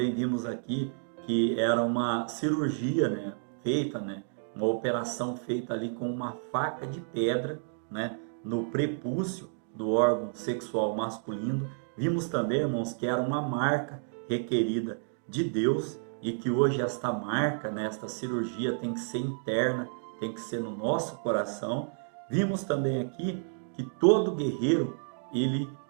vimos aqui que era uma cirurgia, né, feita, né, uma operação feita ali com uma faca de pedra, né, no prepúcio do órgão sexual masculino. Vimos também, irmãos, que era uma marca requerida de Deus e que hoje esta marca, né, esta cirurgia tem que ser interna, tem que ser no nosso coração. Vimos também aqui que todo guerreiro, ele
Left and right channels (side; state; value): left; silent; digital silence